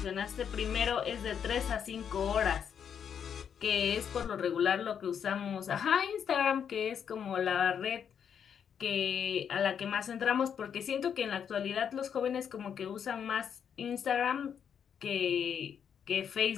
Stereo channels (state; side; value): quieter; right; 7.9 dB